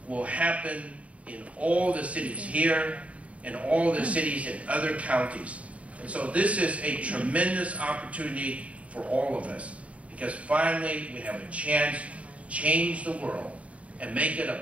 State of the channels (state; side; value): late; left; 0.065 ms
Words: will happen in all the cities here and all the cities in other counties. And so this is a tremendous opportunity for all of us, because finally we have a chance to change the world and make it